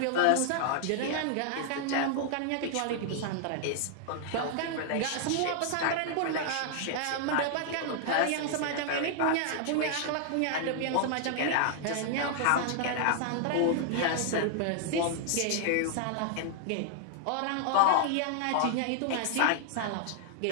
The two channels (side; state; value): both; different; correlation -0.01